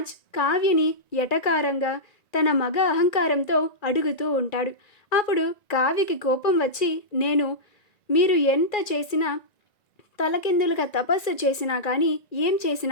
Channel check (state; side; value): late; right; 1.9 ms